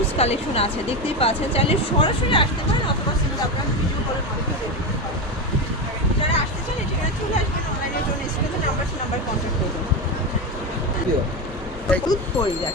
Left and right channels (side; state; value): both; normal; correlation 0.16